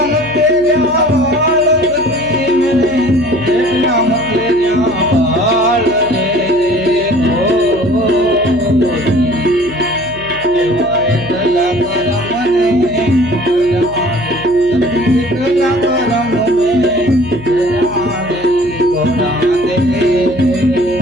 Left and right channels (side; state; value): left; noise; hum, 20 dB below the sound